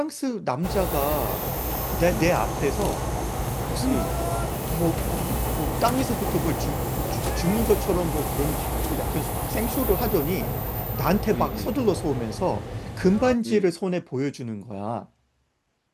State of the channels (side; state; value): both; identical; correlation 1.00